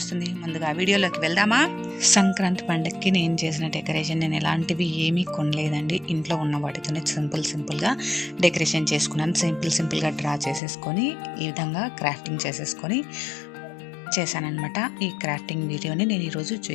వస్తుంది. ముందుగా వీడియోలోకి వెళ్దామా? సంక్రాంతి పండుగకి నేను చేసిన డెకరేషన్ నేను ఎలాంటివి ఏమీ కొనలేదండి. ఇంట్లో ఉన్న వాటితోనే సింపుల్గా డెకరేషన్ చేసుకున్నాను. సింపుల్గా డ్రా చేసేసుకొని ఈ విధంగా క్రాఫ్టింగ్ చేసేసుకొని చేశానన్నమాట. ఈ క్రాఫ్టింగ్ వీడియోని నేను ఈరోజు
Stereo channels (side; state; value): right; drops out; at 10.6 s